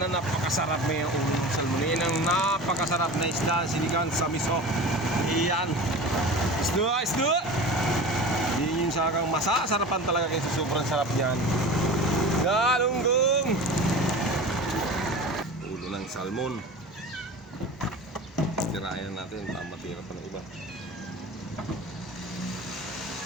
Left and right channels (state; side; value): normal; both; correlation 0.34